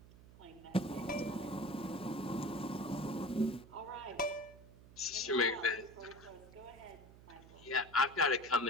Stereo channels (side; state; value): right; noise; hum, 20 dB below the sound